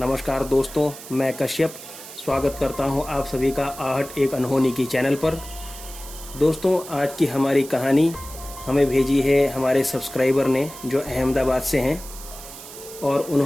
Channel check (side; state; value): right; noise; hiss, 14 dB below the sound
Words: दोस्तों, मैं कश्यप स्वागत करता हूं आप सभी का आहट एक अनहोनी की चैनल पर। दोस्तों, आज की हमारी कहानी हमें भेजी है हमारे सब्सक्राइबर ने जो अहमदाबाद से हैं, और